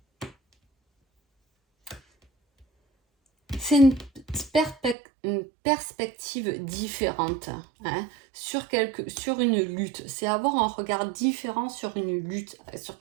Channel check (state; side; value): drops out; left; at 5.0 s